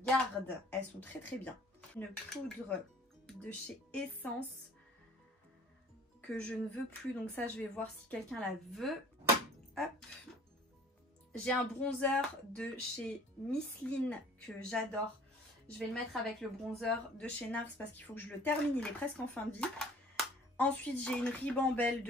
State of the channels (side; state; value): both; normal; correlation 0.51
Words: Elles sont très bien. Une poudre de chez Essence que je ne veux plus. Donc ça, je vais voir si quelqu'un la veut. Hop. J'ai un bronzer de chez Misseline que j'adore. Je vais le mettre avec le bronzer de chez NARS parce qu'il faut que je le termine, il est presque en fin de vie. Ensuite, j'ai une ribambelle